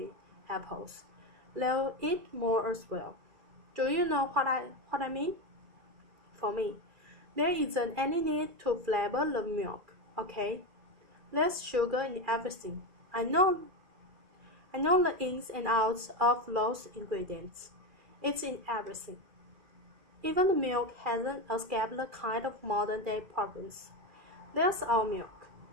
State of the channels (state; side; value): late; left; 2.3 ms